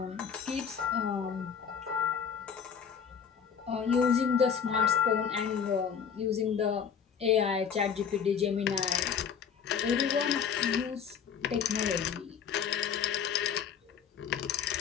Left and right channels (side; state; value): right; quieter; 7.3 dB